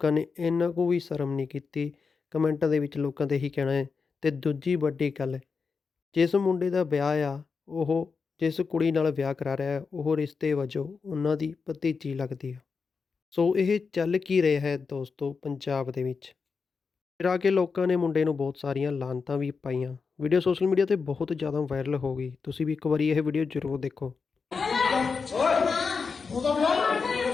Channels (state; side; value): quieter; right; 5.1 dB